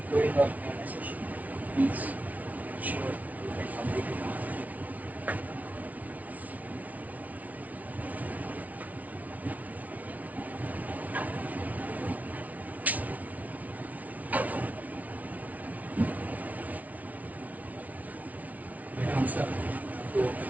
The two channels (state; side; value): late; left; 0.072 ms